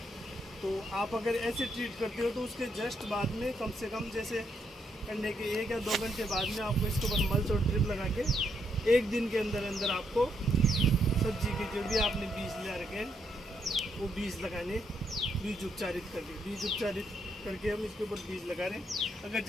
तो आप अगर ऐसे ट्रीट करते हो तो उसके जस्ट बाद में कम से कम जैसे करने के 1 या 2 घंटे बाद में आपको इसके ऊपर मल्च और ड्रिप लगा के 1 दिन के अंदर आपको सब्जी के जो भी आपने बीज ले रखे हैं वो बीज लगाने, बीज उपचारित करके हम इसके ऊपर बीज लगा रहे हैं। अगर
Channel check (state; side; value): normal; both; correlation 0.77